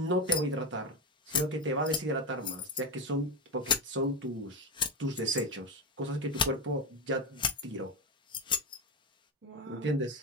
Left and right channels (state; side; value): normal; both; correlation 0.13